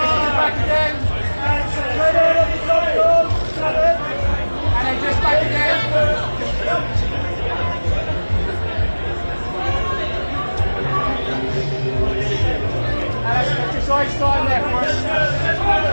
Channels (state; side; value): inverted; both; correlation -1.00